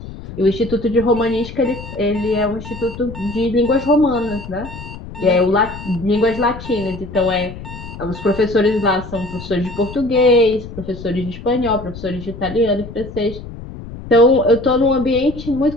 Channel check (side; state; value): left; noise; rumble, 12 dB below the sound